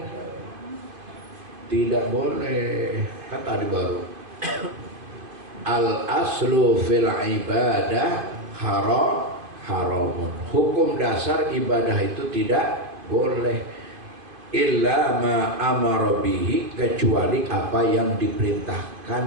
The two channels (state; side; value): late; left; 2.5 ms